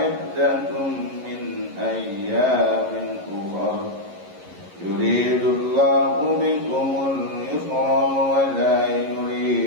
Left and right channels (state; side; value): late; left; 11 ms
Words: من أيام أخر يريد الله بكم اليسر ولا